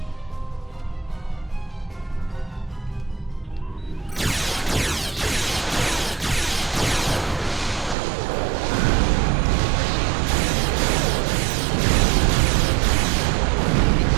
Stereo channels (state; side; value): drops out; left; at 8.0 s